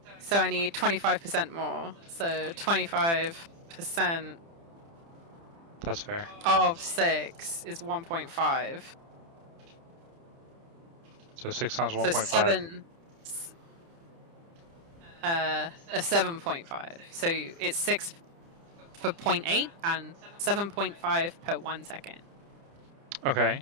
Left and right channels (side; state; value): left; late; 30 ms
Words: So I need 25% more. So 25% That's fair. of 6 is 1.5. So 6 times So 1.5. 7.5. So it's 6 for 0.8 and 7.5 per 1 second. Okay.